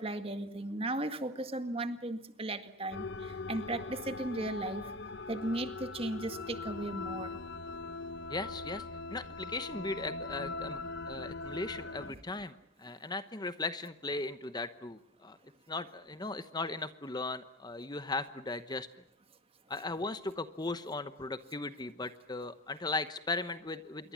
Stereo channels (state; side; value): normal; both; correlation 0.29